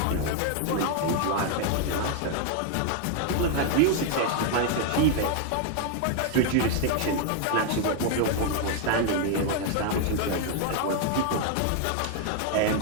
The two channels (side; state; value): both; different; correlation 0.00